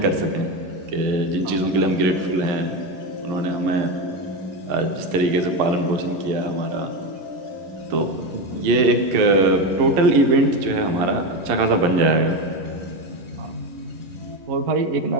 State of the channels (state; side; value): late; left; 11 ms